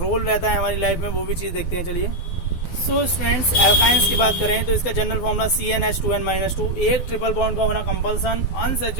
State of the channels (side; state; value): right; late; 12 ms